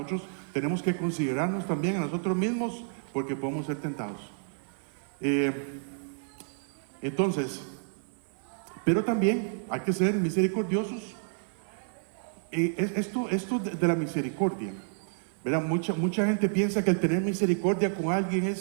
tenemos que considerarnos también a nosotros mismos, porque podemos ser tentados. Entonces, pero también hay que ser misericordiosos. Esto de la misericordia, ¿verdad? Mucha gente piensa que el tener misericordia con alguien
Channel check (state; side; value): silent; left; 58 dB below the other